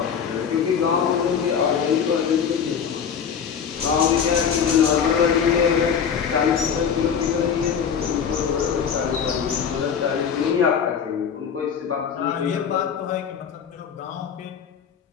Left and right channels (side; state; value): right; quieter; 7.3 dB